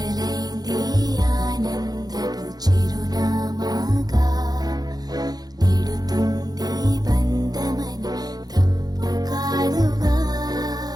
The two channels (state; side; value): late; left; 0.19 ms